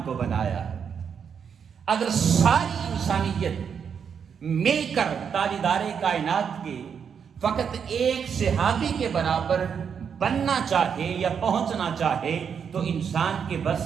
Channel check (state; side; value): quieter; left; 7.1 dB